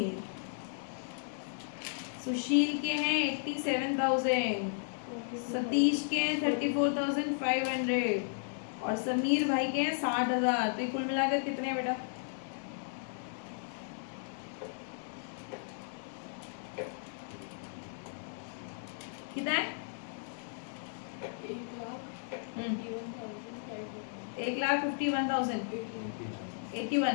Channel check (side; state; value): right; silent; 55 dB below the other